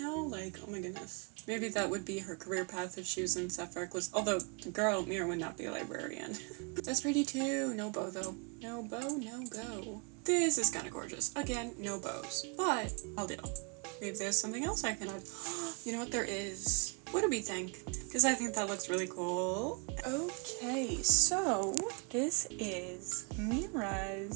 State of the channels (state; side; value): quieter; left; 32.4 dB